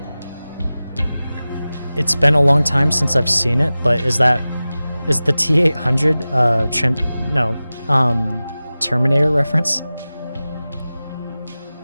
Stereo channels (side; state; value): both; inverted; correlation -0.96